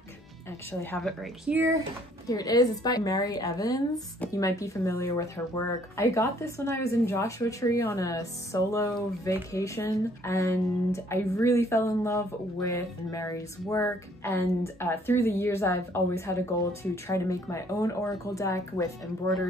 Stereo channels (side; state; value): both; normal; correlation 0.62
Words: I actually have it right here. Here it is. It's by Mary Evans. You might be familiar with her work. I got this when I was in Joshua Tree on a solo vacation, and I really fell in love with Mary's work. And through the years, I've always had a goal to try to make my own oracle deck with